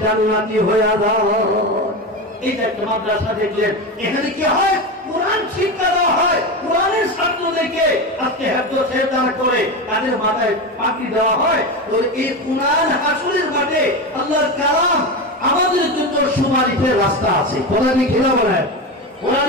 জান্নাতি হয়ে যায়। এই যে একটা মাদ্রাসা দেখলেন, এখানে কি হয়? কোরআন শিক্ষা দেওয়া হয়, কোরআনের ছাত্রদেরকে আজকে হেফজ সেজদা করে তাদের মাথায় পাগড়ি দেওয়া হয়। তো এই কোরআন হাসরের মাঠে আল্লাহর কালাম আমাদের জন্য সুপারিশের রাস্তা আছে। কথা কি খেলা বলেন?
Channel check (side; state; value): both; normal; correlation 0.20